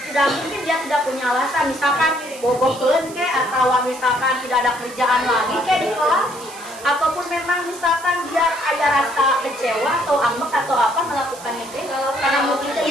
mungkin dia tidak punya alasan. Misalkan bogokeun atau misalkan tidak ada kerjaan lagi di kelas. Ataupun memang misalkan dia ada rasa kecewa atau ambek atau apa melakukan itu karena mungkin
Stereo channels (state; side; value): noise; right; hiss, 17 dB below the sound